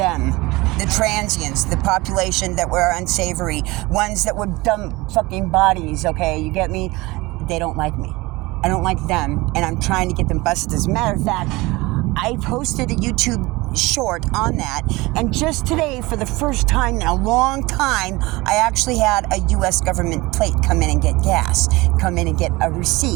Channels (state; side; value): quieter; left; 21.9 dB